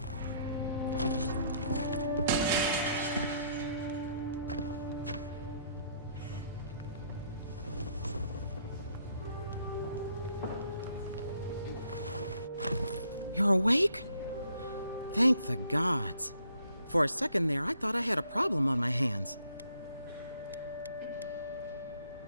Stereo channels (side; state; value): both; inverted; correlation -0.67